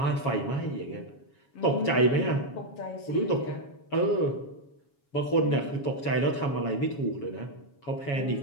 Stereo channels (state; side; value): late; right; 7.2 ms